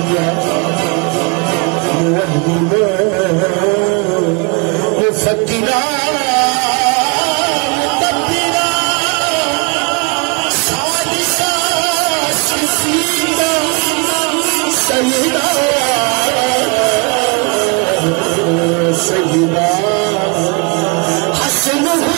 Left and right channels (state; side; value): quieter; left; 31.9 dB